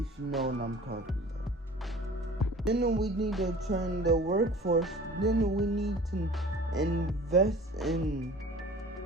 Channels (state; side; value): normal; both; correlation 0.44